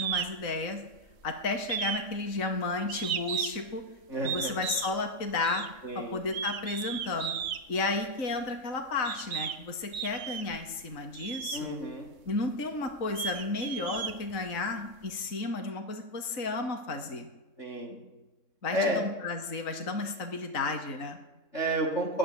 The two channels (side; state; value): right; late; 3.9 ms